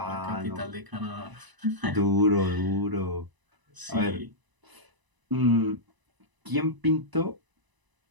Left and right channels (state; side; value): late; left; 1.0 ms